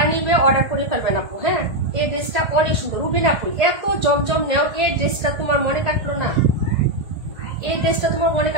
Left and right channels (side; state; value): left; late; 1.8 ms